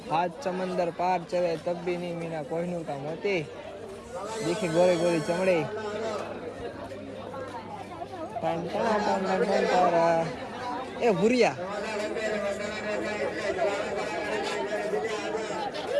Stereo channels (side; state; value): both; identical; correlation 1.00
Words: હાથ સમંદર પાર ચલે તબ भी नहीं मीना कोहिनूर का मोती देखी गोरी गोरी चमड़ी टन टन टन टन टन तारा ए भूरिया